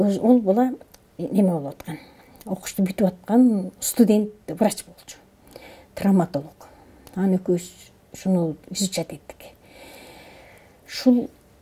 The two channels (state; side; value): identical; both; correlation 1.00